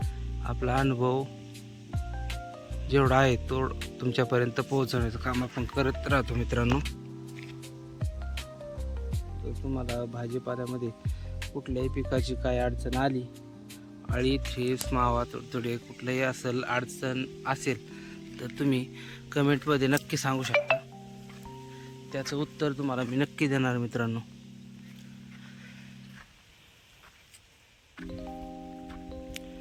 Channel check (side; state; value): both; identical; correlation 1.00